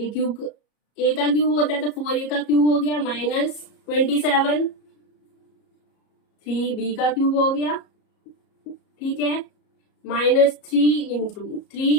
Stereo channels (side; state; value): right; late; 34 ms